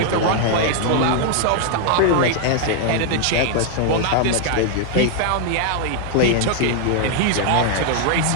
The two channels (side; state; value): both; different; correlation 0.00